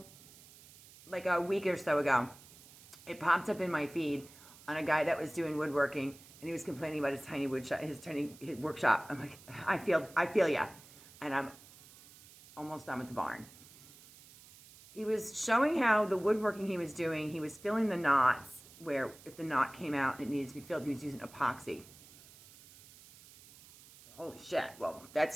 like a week or so ago. It popped up in my feed on a guy that was doing woodworking. And he was complaining about his tiny his workshop. I'm like, I feel ya. And I'm almost done with the barn. He was showing how the woodworking he was doing, he was filling the knots where if the knot came out and it needed to be filled, he was using epoxy. Holy shit, well,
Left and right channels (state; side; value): noise; right; hiss, 21 dB below the sound